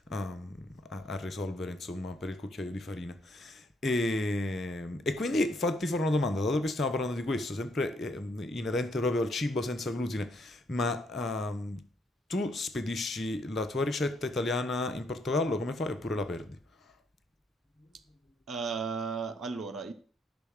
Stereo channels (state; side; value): normal; both; correlation 0.72